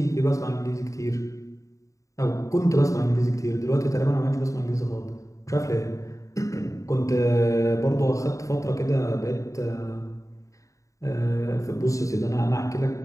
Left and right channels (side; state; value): right; late; 0.16 ms